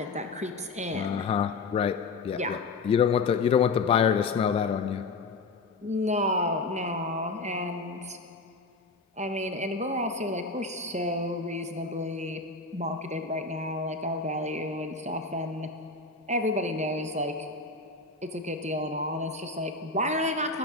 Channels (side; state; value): right; quieter; 3.9 dB